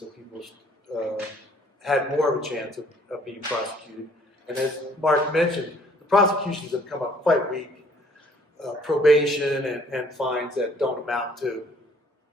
people had more of a chance of being prosecuted. And as Mark mentioned, the prosecutions have come up quite weak. Probation and fines that don't amount to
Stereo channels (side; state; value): both; normal; correlation 0.60